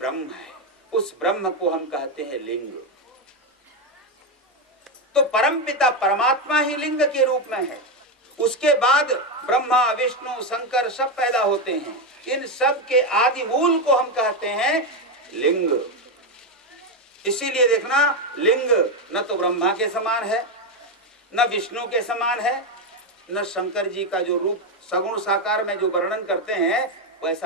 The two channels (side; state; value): both; normal; correlation 0.08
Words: है। उस ब्रह्म को हम कहते हैं लिंग। तो परमपिता परमात्मा ही लिंग के रूप में है। उसके बाद ब्रह्मा, विष्णु, शंकर सब पैदा होते हैं। इन सब के आदि मूल को हम कहते हैं लिंग। इसीलिए देखना, लिंग न तो ब्रह्मा के समान है, न विष्णु के समान है, न शंकर जी का जो रूप सगुण साकार में जो वर्णन करते हैं